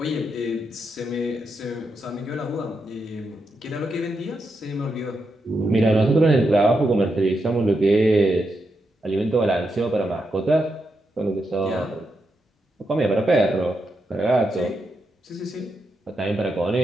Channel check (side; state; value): both; normal; correlation 0.84